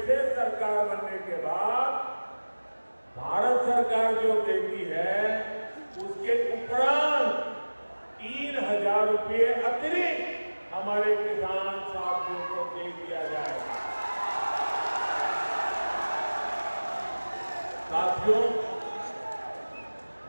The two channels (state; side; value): inverted; both; correlation -1.00